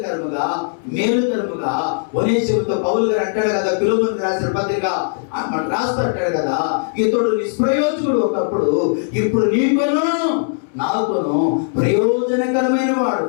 మేలుకరముగా ఒనేసిముతో పౌలు గారు అంటాడు కదా, ఫిలిప్పీయులకు రాసిన పత్రిక రాస్తూ అంటాడు కదా, ఇతడు నిష్ప్రయోజకుడు ఒకప్పుడు, ఇప్పుడు నీకును నాకును ప్రయోజనకరమైన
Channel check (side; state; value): right; silent; digital silence